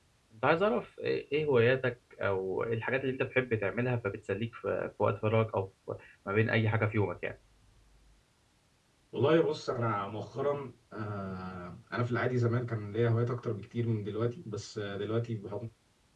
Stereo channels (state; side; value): identical; both; correlation 1.00